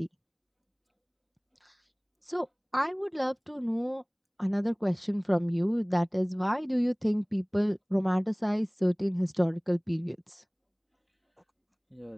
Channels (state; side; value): identical; both; correlation 1.00